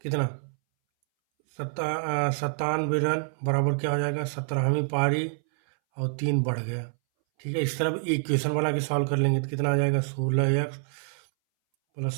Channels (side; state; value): left; silent; 60 dB below the other